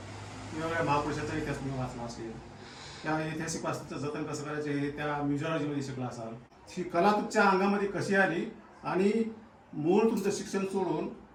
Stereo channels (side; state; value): both; identical; correlation 1.00